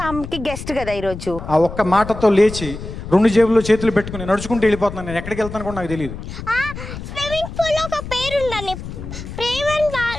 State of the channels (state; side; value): noise; left; rumble, 10 dB below the sound